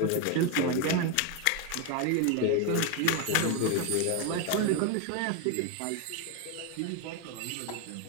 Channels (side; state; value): both; different; correlation 0.02